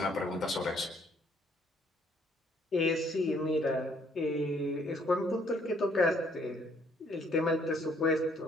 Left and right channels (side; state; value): both; normal; correlation 0.65